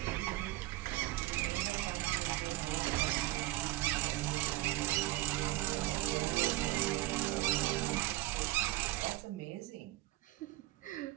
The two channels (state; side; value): quieter; left; 18.0 dB